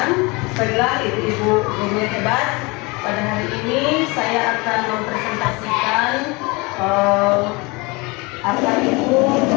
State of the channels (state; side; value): quieter; right; 26.3 dB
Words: Baiklah ibu-ibu guru hebat. Pada hari ini saya akan mempresentasikan apa itu